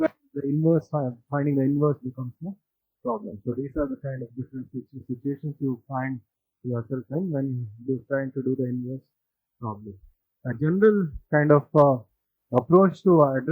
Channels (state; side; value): identical; both; correlation 1.00